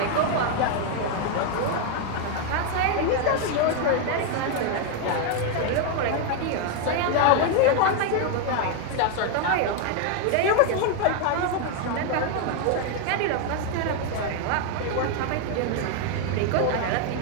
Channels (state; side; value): different; both; correlation 0.01